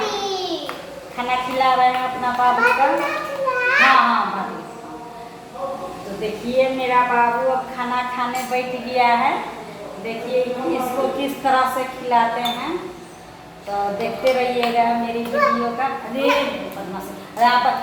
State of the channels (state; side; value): identical; both; correlation 1.00